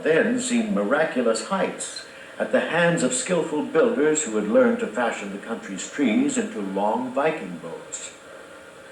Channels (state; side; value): identical; both; correlation 1.00